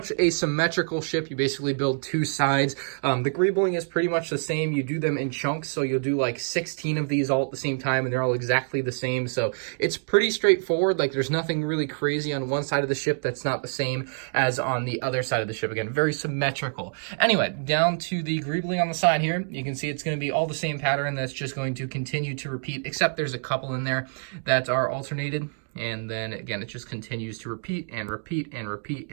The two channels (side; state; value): left; silent; digital silence